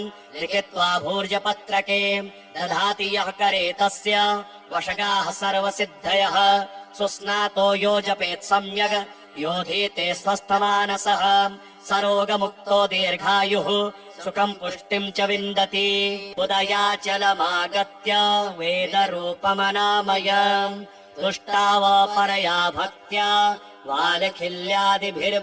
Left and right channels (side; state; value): both; identical; correlation 1.00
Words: लिखित्वा भूर्जपत्रके दधाति यः करे तस्य वशगाः सर्वसिद्धयः सुस्नातो यो जपेत् सम्यग् योधीते स्वस्थमानसः सरोगमुक्तो दीर्घायुः सुखम् पुष्टिम् च विन्दति उदयाचलमागत्य वेदरूपमनामयम् तुष्टावपरया भक्त्या